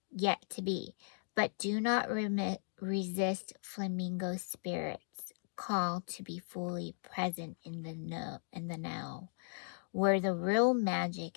yet to be. But do not resist flamingo spirit's call to be fully present in the now, where the real magic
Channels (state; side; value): silent; right; digital silence